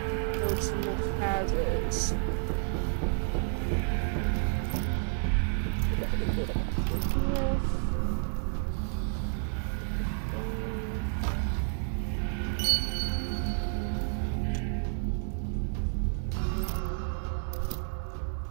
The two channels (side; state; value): left; silent; 57 dB below the other